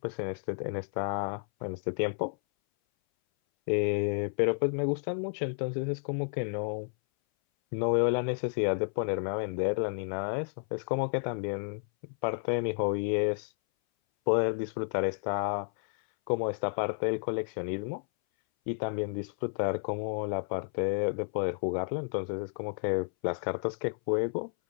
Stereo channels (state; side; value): silent; right; 57 dB below the other